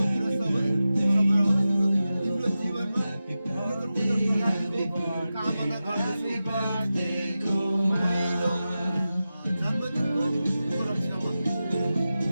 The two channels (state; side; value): inverted; both; correlation -0.93